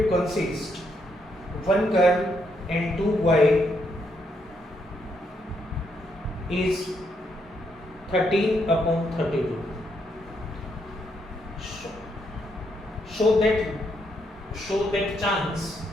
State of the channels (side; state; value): both; normal; correlation 0.76